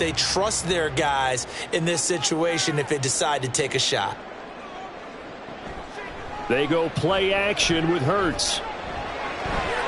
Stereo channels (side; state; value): both; identical; correlation 1.00